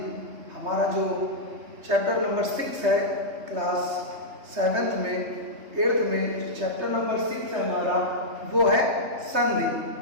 हमारा जो चैप्टर नंबर 6 है क्लास 7th में 8th में जो चैप्टर नंबर 6 है हमारा वो है संधि।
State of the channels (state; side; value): late; left; 3.2 ms